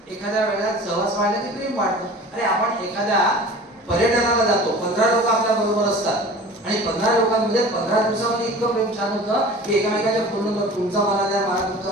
एखाद्या वेळेला सहवास वाढला की प्रेम वाढतं. अरे आपण एखाद्या पर्यटनाला जातो 15 लोक आपल्या बरोबर असतात आणि 15 लोकांमध्ये 15 दिवसामध्ये इतकं प्रेम छान होतं की एकमेकाच्या फोन नंबर तुमचा मला द्या मला तुमचा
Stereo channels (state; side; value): normal; both; correlation 0.41